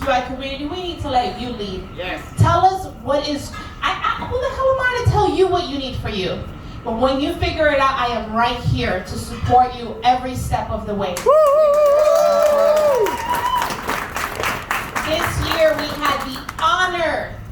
community, we need to let you lead. Yes. Tell us what is, who the hell am I to tell you what you need for you? But when you figure it out, I am right here to support you every step of the way. This year we had the honor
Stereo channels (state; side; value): identical; both; correlation 1.00